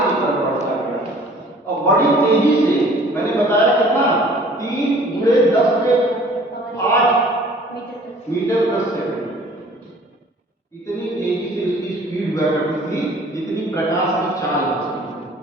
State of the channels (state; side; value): normal; both; correlation 0.51